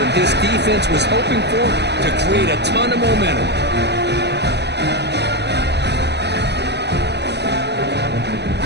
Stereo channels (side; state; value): left; late; 0.50 ms